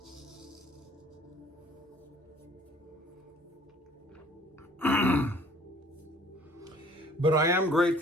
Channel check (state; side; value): normal; both; correlation 0.54